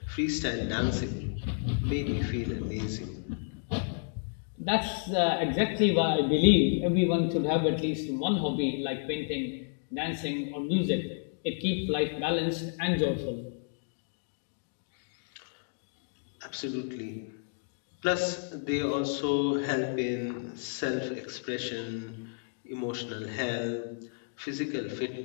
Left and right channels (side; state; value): right; silent; digital silence